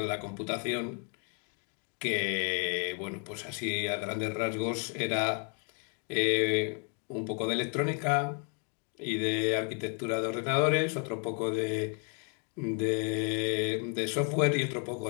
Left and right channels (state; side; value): quieter; right; 38.8 dB